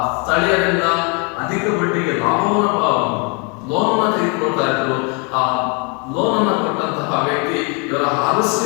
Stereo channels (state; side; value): quieter; right; 34.1 dB